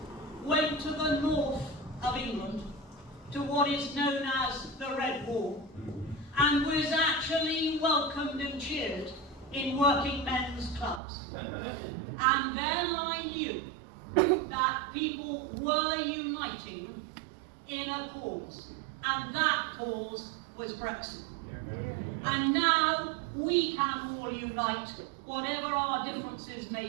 went to the north of England, to what is known as the Red Wall, and was actually welcomed and cheered in working men's clubs. And then I knew that people were uniting in a cause, and that cause was Brexit. And now we can all unite, whatever our differences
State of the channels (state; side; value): drops out; left; at 11.0 s